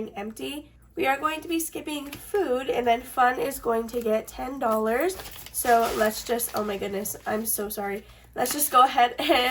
empty. We are going to be skipping food, and then fun is going to get $10. So let's just, oh my goodness, I'm so sorry. Let's just go ahead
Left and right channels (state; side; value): identical; both; correlation 1.00